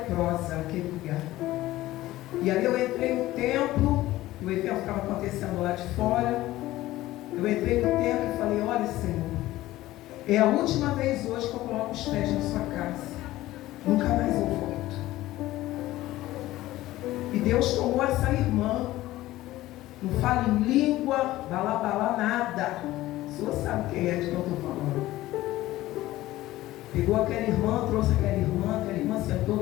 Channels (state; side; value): quieter; right; 16.4 dB